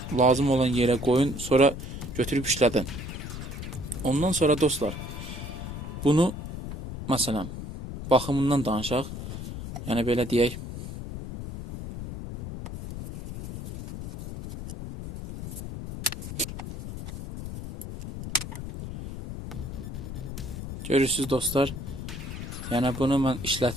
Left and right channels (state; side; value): noise; left; rumble, 8 dB below the sound